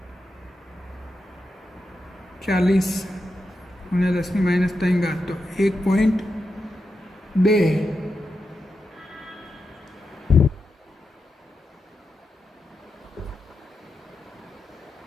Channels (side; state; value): both; normal; correlation 0.88